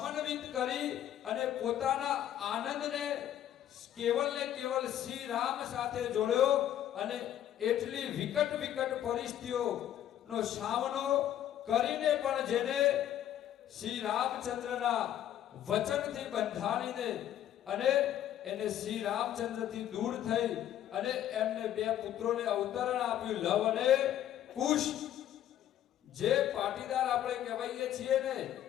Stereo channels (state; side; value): quieter; right; 11.3 dB